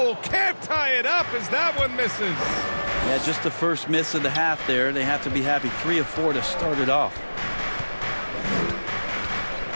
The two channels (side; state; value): both; inverted; correlation -1.00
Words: can't tie it up as that one misses. Yeah, just the first miss of the half there. They have to be happy. 3 of 4 to start it off.